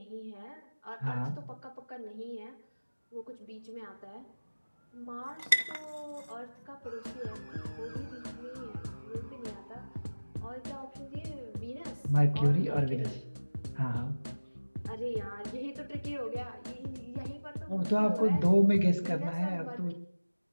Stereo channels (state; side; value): inverted; both; correlation -1.00